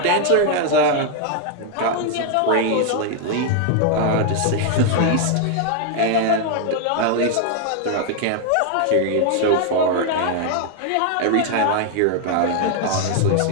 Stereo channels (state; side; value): different; both; correlation 0.00